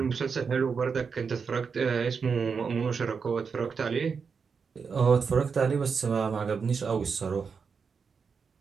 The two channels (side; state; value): left; quieter; 5.7 dB